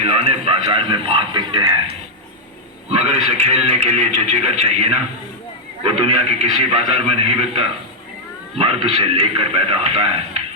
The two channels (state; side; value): normal; both; correlation -0.04